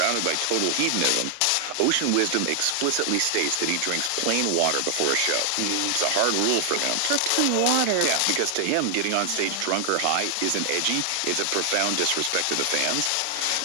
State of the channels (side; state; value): both; different; correlation 0.00